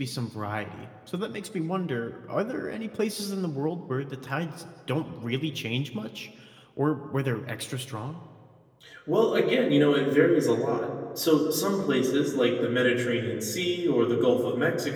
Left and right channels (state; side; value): identical; both; correlation 1.00